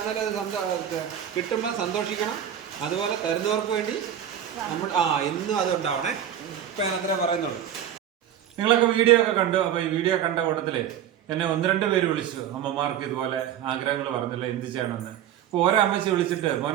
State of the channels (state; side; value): quieter; left; 10.1 dB